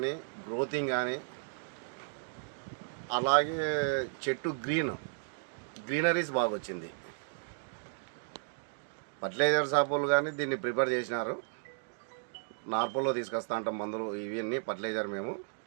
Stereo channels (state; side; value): silent; left; digital silence